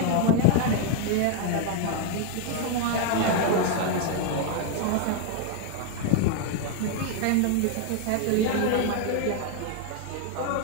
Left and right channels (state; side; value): different; both; correlation 0.01